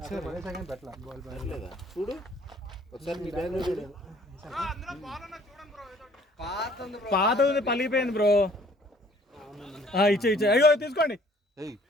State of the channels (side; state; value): both; normal; correlation 0.57